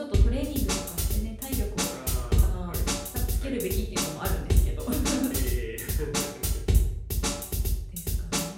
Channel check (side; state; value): both; identical; correlation 1.00